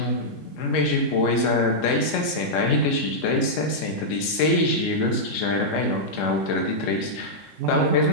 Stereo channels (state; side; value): late; right; 3.7 ms